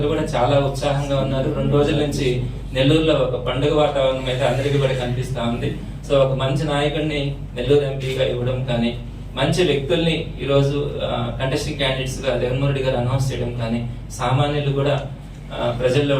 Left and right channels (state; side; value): identical; both; correlation 1.00